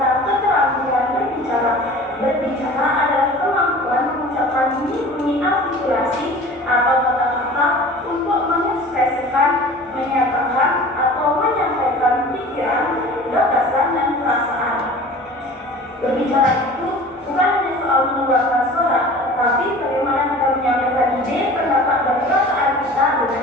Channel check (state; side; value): normal; both; correlation 0.42